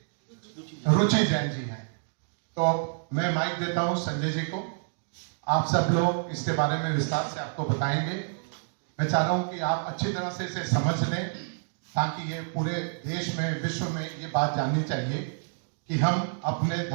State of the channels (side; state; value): left; silent; digital silence